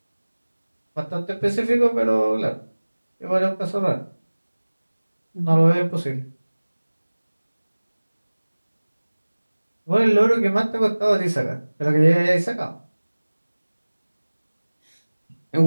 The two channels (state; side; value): inverted; both; correlation -1.00